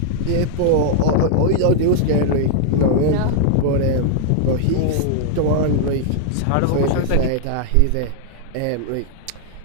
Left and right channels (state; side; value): different; both; correlation -0.01